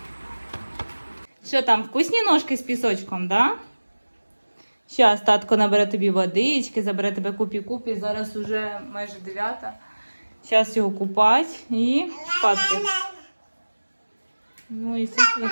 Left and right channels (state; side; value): inverted; both; correlation -1.00